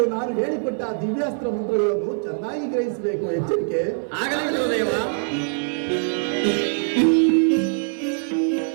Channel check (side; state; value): left; silent; 63 dB below the other